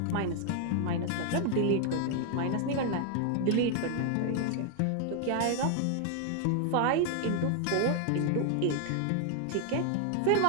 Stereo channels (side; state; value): both; different; correlation 0.00